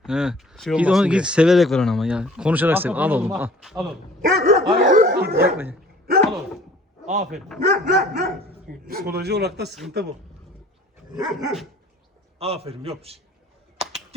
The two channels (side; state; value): both; normal; correlation 0.50